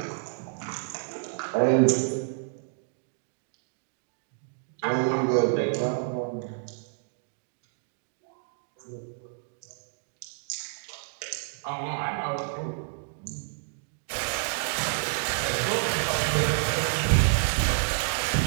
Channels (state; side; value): silent; left; digital silence